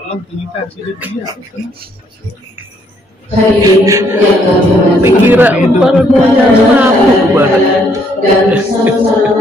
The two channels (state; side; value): normal; both; correlation 0.69